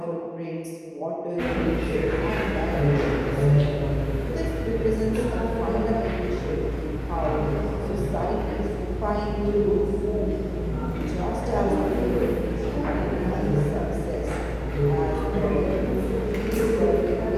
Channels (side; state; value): both; identical; correlation 1.00